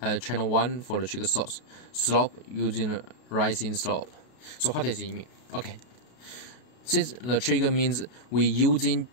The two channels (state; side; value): late; right; 32 ms